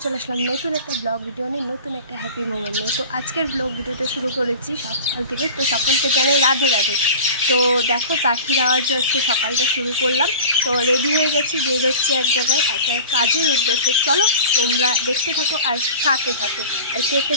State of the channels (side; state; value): both; inverted; correlation -0.37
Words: চলে আসলাম নতুন একটা ব্লগ ভিডিও নিয়ে, নতুন একটা হ্যাপি মোমেন্ট নিয়ে। তো আজকের ব্লগ ভিডিওটা শুরু করেছি সকাল থেকে। তো সকলকে জানাই রাধে রাধে। তো দেখো পাখির আওয়াজে আজকে সকালটা শুরু করলাম। তো রেডি হয়ে গেছি, বের হচ্ছে এক জায়গায় একটা কাজের উদ্দেশ্যে। চলো তোমরা দেখতে থাকো আর সাথে থাকো, আর কে